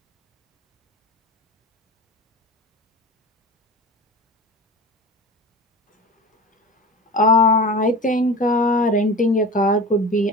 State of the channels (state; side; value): normal; both; correlation 0.33